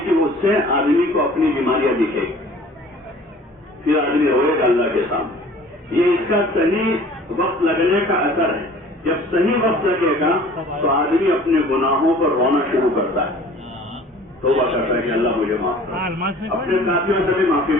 کی، اس سے آدمی کو اپنی بیماریاں دکھے گی، پھر آدمی روئے گا اللہ کے سامنے. یہ اس کا صحیح وقت لگنے کا اثر ہے. جب صحیح وقت لگے گا تو آدمی اپنے گناہوں پر رونا شروع کرتا ہے، توبہ کرتا ہے کہ اللہ مجھے معاف کر. اپنے ساتھیوں سے بھی معافی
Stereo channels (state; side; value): normal; both; correlation 0.48